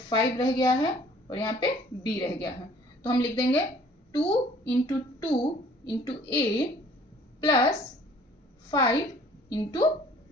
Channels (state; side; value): normal; both; correlation 0.55